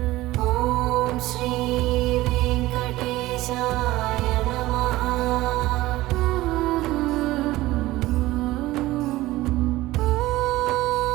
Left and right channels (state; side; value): quieter; left; 17.6 dB